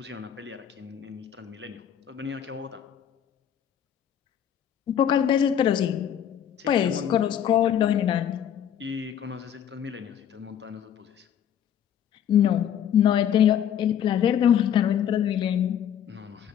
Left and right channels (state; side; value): quieter; right; 9.4 dB